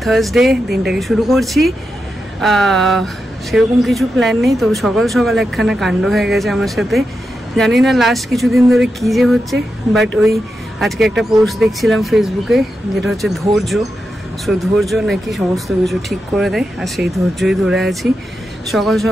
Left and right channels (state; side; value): normal; both; correlation 0.88